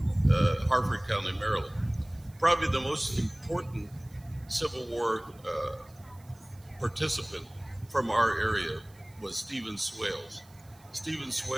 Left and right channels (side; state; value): right; noise; hiss, 27 dB below the sound